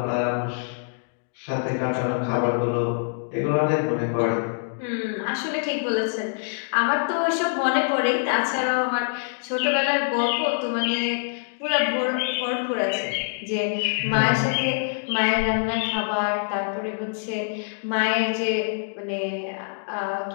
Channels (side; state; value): right; silent; digital silence